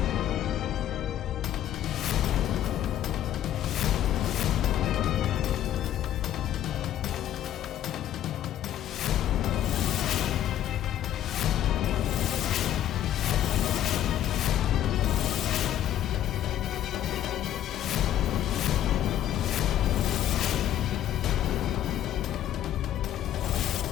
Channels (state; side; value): quieter; right; 11.6 dB